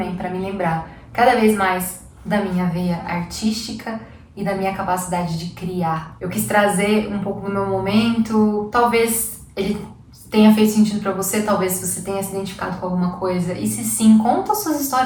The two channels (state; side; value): identical; both; correlation 1.00